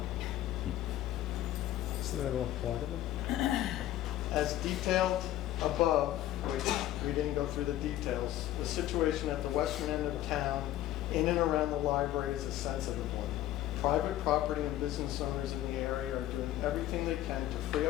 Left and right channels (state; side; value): quieter; right; 13.7 dB